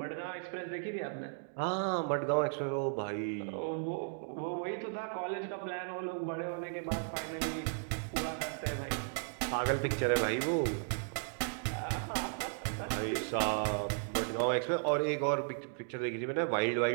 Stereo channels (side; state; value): left; silent; digital silence